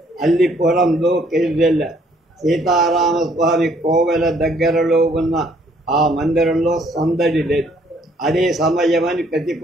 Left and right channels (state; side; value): normal; both; correlation 0.64